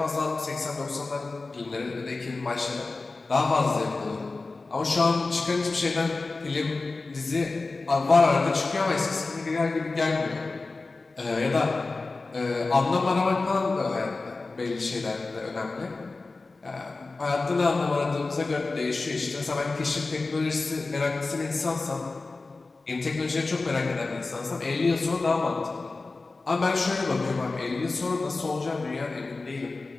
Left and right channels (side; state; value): right; quieter; 3.6 dB